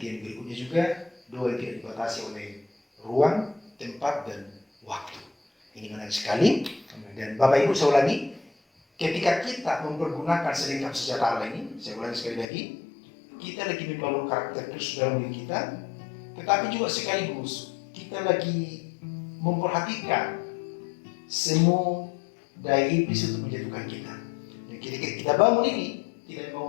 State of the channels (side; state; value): right; drops out; at 12.5 s